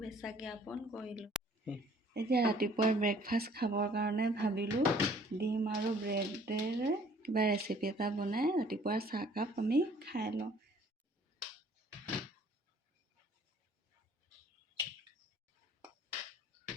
জ্ঞাপন কৰিলোঁ। এতিয়া ৰাতিপুৱাৰ ব্ৰেকফাষ্ট খাবৰ কাৰণে ভাবিলোঁ ডিম আৰু ব্ৰেডেৰে কিবা ৰেচিপি এটা বনাই ৰাতিপুৱাৰ চাহকাপ আমি খাই লওঁ।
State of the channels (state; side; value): normal; both; correlation 0.56